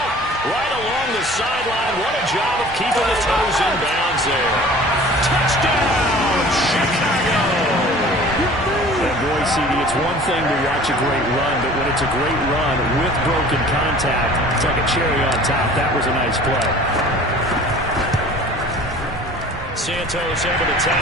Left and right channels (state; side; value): normal; both; correlation 0.46